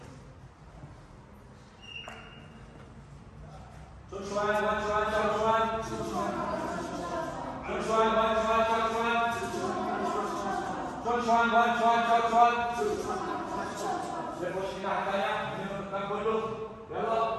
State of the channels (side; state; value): both; identical; correlation 1.00